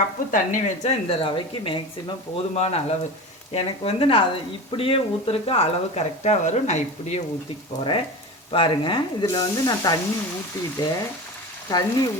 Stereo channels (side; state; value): both; normal; correlation 0.29